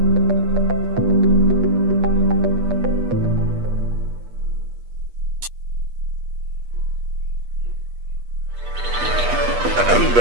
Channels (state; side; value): late; left; 8.3 ms